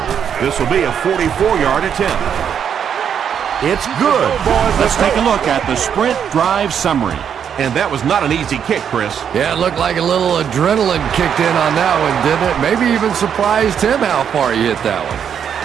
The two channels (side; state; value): left; quieter; 8.1 dB